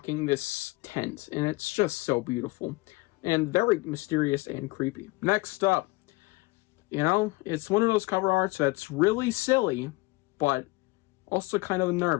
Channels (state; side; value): quieter; right; 23.0 dB